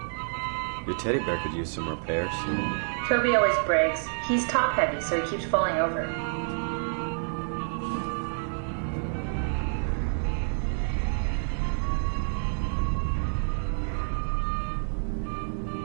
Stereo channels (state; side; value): silent; left; digital silence